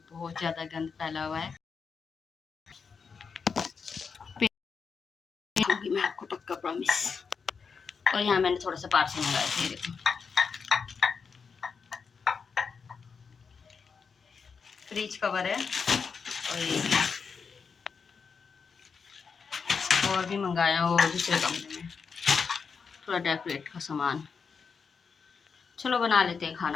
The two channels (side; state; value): right; quieter; 5.6 dB